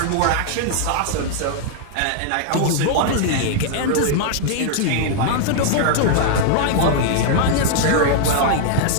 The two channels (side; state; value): both; different; correlation 0.00